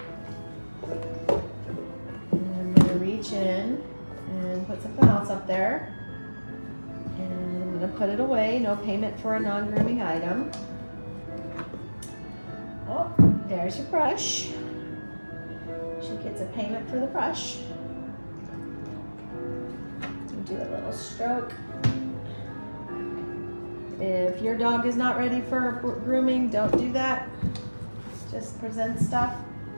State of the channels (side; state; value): both; inverted; correlation -1.00